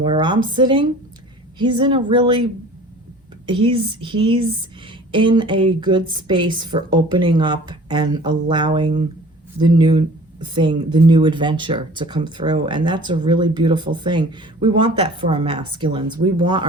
I'm sitting, he's in a really, he's in a good space for opening up and allowing the new thing, the new adventure to come through. And that's a really beautiful thing. We want that for our masculines. We want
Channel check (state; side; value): normal; both; correlation 0.46